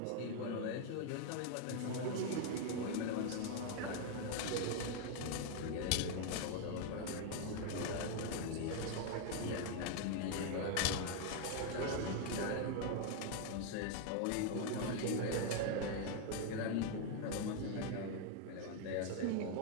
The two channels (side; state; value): both; different; correlation 0.00